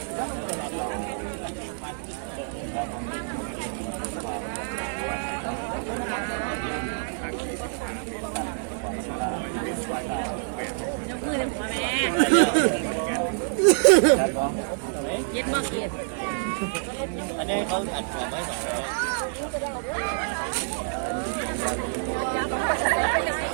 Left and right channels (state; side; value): silent; left; 60 dB below the other